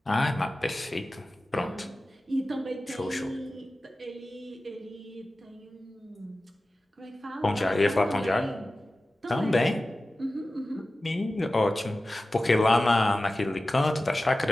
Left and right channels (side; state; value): both; normal; correlation 0.95